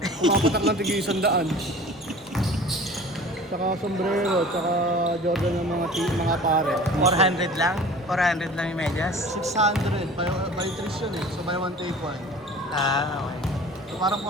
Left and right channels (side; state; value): both; normal; correlation 0.43